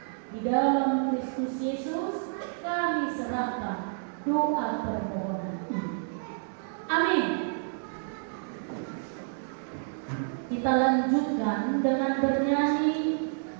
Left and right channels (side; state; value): left; silent; digital silence